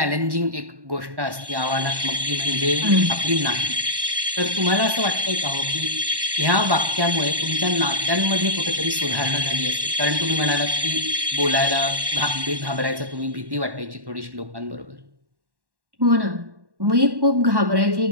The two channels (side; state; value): left; late; 1.1 ms